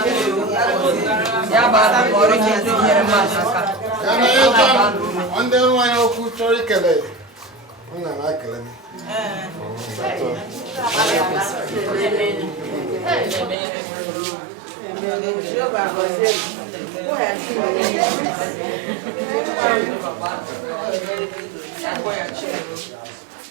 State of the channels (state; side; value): drops out; left; at 13.6 s